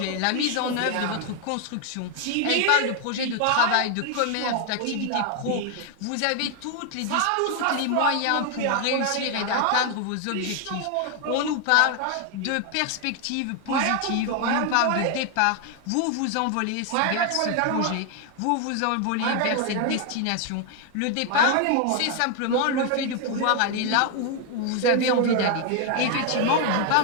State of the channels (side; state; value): both; different; correlation 0.00